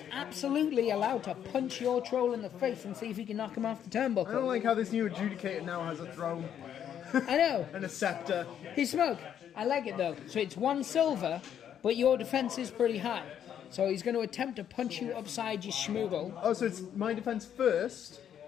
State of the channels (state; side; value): quieter; right; 9.4 dB